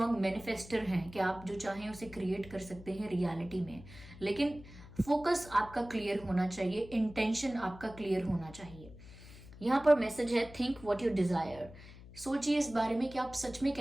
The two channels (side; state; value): left; noise; hum, 18 dB below the sound